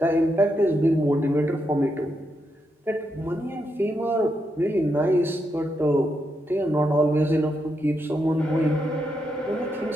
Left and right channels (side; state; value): both; normal; correlation 0.82